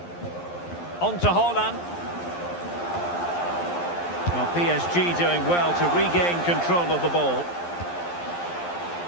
On to Haaland. Well, PSG doing well to regain control of the ball.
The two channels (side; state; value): right; late; 11 ms